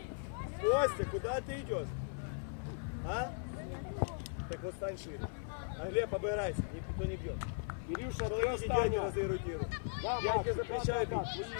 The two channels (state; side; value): silent; right; 52 dB below the other